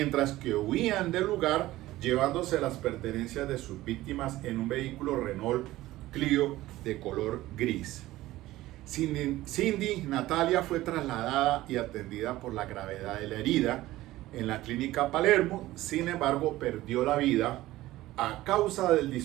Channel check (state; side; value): quieter; left; 16.6 dB